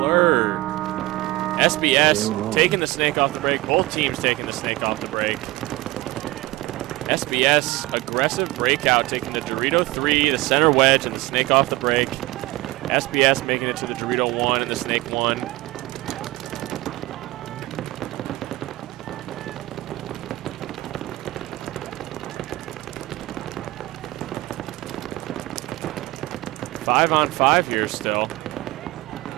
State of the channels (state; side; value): quieter; left; 19.6 dB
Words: SBS taking the snake off the break. Both teams taking the snake off the break. SBS, aggressive breakout, taking the Dorito 3, the center wedge, and the snake off the break. SBS making it to the Dorito 1 and the snake 1. Five on five here still.